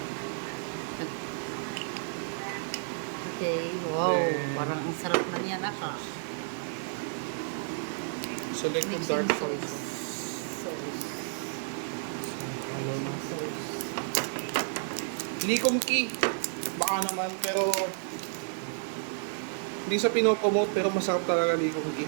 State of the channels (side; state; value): left; silent; digital silence